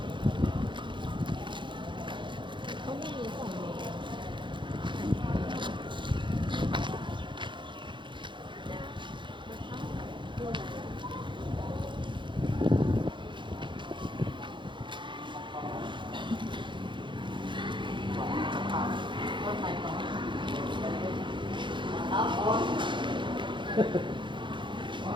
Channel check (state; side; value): late; left; 0.23 ms